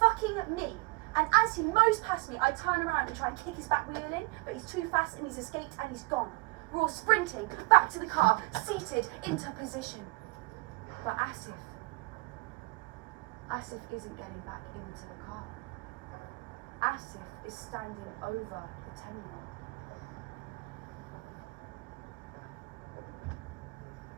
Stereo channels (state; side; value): quieter; left; 24.5 dB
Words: me. And as he mows past me, I turn around and try and kick his back wheel in, but he's too fast and he's escaped and he's gone. We're all sprinting back to the car, seated into position. But Asif isn't getting back into the car. Asif is standing over the 10-year-old.